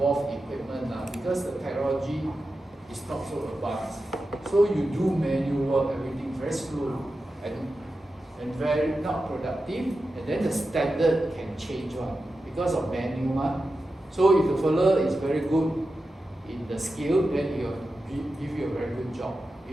equipment because the technology is not so advanced. So you do manual work, everything very slow and very not productive, and then the standard can change because of manual. So if the fellow is very good in the skill, then he will give you a very good job.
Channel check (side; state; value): both; normal; correlation 0.92